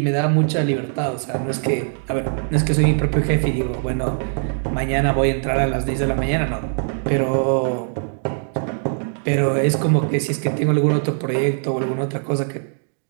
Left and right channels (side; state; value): left; silent; digital silence